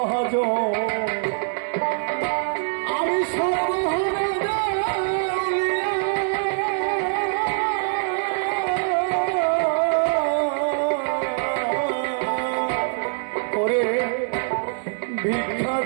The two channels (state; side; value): silent; left; 63 dB below the other